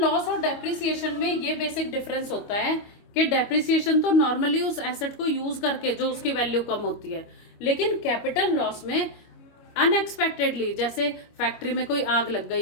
लॉस और डेप्रिसिएशन में ये बेसिक डिफरेंस होता है कि डेप्रिसिएशन तो नॉर्मली उस एसेट को यूज करके जो उसकी वैल्यू कम होती है, लेकिन कैपिटल लॉस में अनएक्सपेक्टेडली, जैसे फैक्ट्री में कोई आग लग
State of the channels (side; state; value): right; late; 25 ms